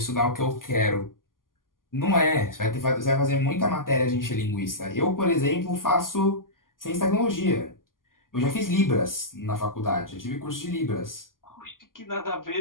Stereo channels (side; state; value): right; late; 0.91 ms